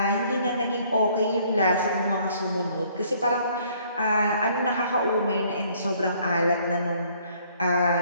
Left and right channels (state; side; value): inverted; both; correlation -0.62